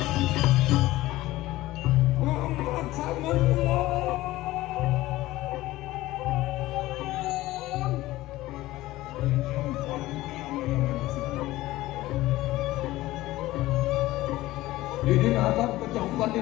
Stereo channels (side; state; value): right; quieter; 17.2 dB